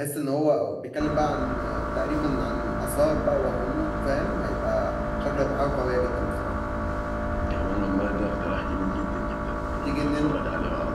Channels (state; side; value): identical; both; correlation 1.00